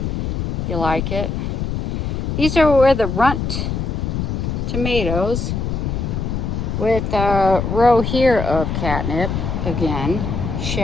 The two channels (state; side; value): noise; left; rumble, 2 dB below the sound